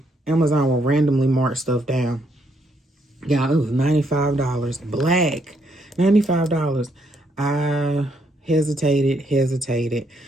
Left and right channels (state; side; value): normal; both; correlation 0.74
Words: Amazon will randomly mark stuff down. Yeah, it was $95. Black. $95. I hesitated,